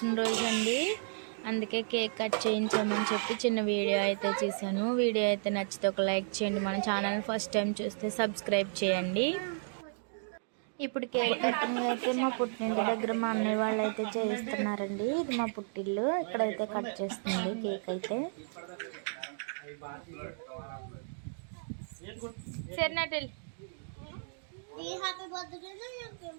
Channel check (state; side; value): silent; left; digital silence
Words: అండి. అందుకే కేక్ కట్ చేయించామని చెప్పి చిన్న వీడియో అయితే చేశాను. వీడియో అయితే నచ్చితే ఒక లైక్ చేయండి. మన ఛానల్ ఫస్ట్ టైం చూస్తే సబ్స్క్రైబ్ చేయండి. ఇప్పుడు కేక్ కటింగ్ అయితే మా పుట్టింటి దగ్గర మా అన్నయ్య వాళ్ళు అయితే చేయిస్తున్నారండి. ఇది మా పుట్టిల్లు. ఇక్కడైతే కట్ చేస్తుంది కేక్ అయితే. సరేనటెల్